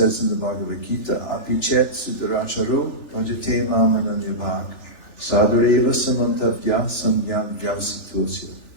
in the Bhagavad Gita, apichet sudaracharo bhajate mamananyabhak sadhareva samantavya samyam vyavasitosya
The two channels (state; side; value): late; right; 3.4 ms